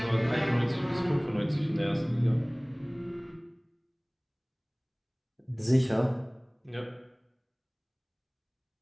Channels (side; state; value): both; identical; correlation 1.00